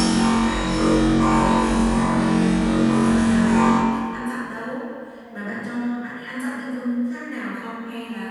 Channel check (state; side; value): identical; both; correlation 1.00